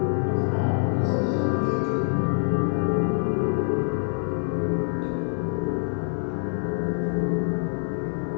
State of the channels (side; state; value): right; silent; digital silence